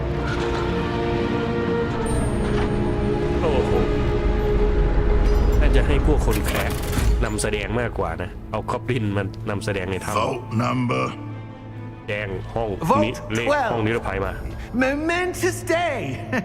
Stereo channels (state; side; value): identical; both; correlation 1.00